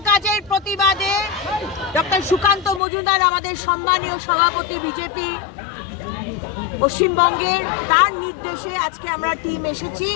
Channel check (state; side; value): drops out; right; at 2.8 s